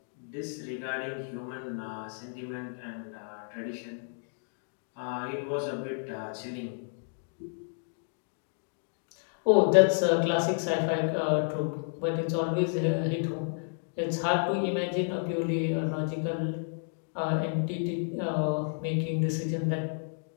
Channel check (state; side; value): silent; right; digital silence